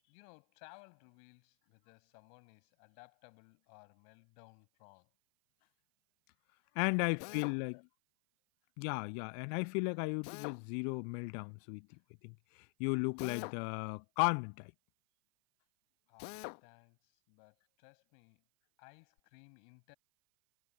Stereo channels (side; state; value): right; silent; 50 dB below the other